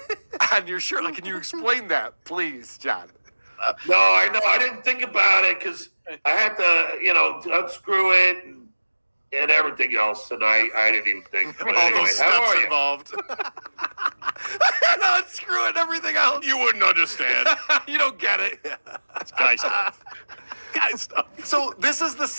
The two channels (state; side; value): inverted; both; correlation -1.00